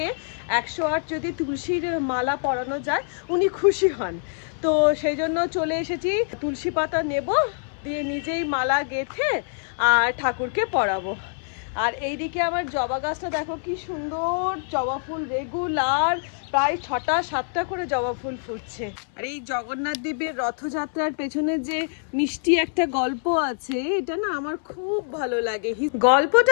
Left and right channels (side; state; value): right; silent; 62 dB below the other